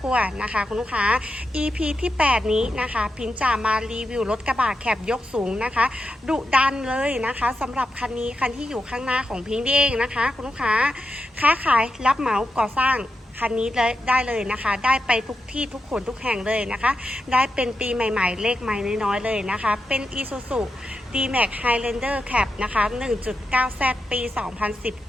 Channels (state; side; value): normal; both; correlation 0.88